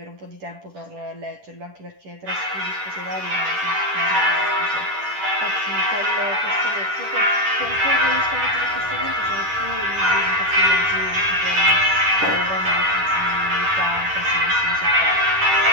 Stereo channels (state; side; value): late; left; 10 ms